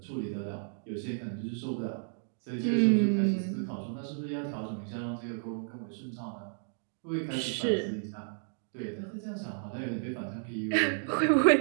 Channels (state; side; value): silent; left; digital silence